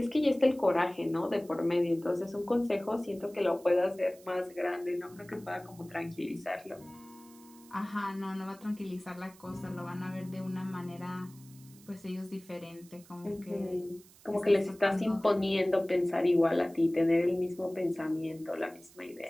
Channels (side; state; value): right; noise; hiss, 24 dB below the sound